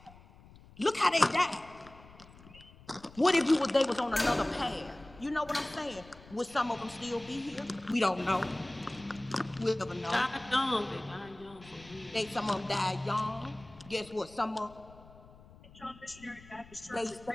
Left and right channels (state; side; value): noise; left; rumble, 22 dB below the sound